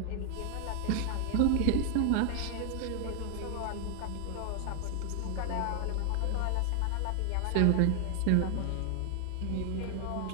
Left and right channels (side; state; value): both; different; correlation 0.00